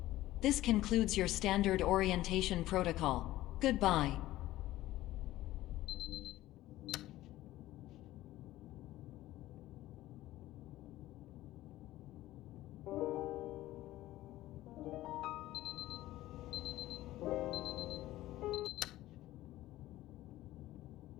This concludes your standard orientation protocol. Goodbye.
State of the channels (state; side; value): quieter; right; 15.8 dB